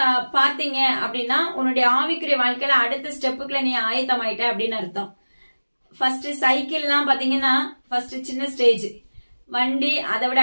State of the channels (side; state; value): both; inverted; correlation -1.00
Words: பாத்தீங்க அப்படின்னா உன்னுடைய ஆவிக்குரிய வாழ்க்கையில அடுத்த ஸ்டெப்புக்குள்ள நீ ஆயத்தமாயிட்ட அப்படின்னு அர்த்தம். ஃபர்ஸ்ட் சைக்கிள்லாம் பாத்தீங்கன்னா ஃபர்ஸ்ட் சின்ன ஸ்டேஜ், வண்டி அதை விட